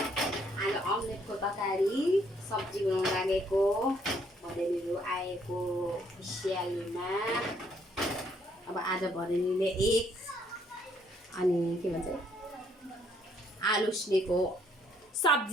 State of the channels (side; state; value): both; normal; correlation 0.67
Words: आज अमलेटको तरकारी सब्जी बनाउन लागेको भदैनीहरू आएको खुसियालीमा। अब आज भदैनीले एक अनि के भन्छ आलु उसिनेको